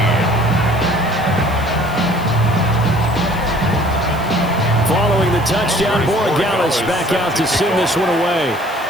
Following the touchdown, Borregales back out to send this one away.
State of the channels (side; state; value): left; noise; hiss, 20 dB below the sound